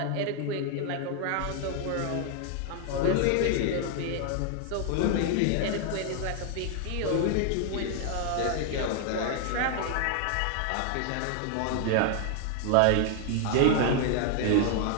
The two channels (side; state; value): both; different; correlation 0.00